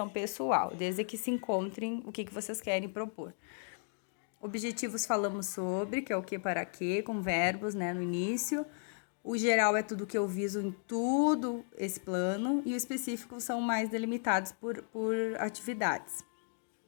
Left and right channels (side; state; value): right; silent; 55 dB below the other